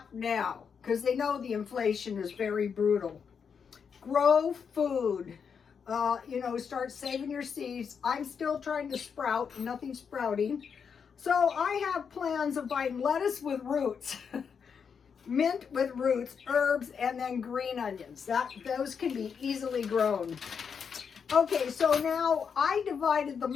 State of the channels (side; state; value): right; quieter; 6.5 dB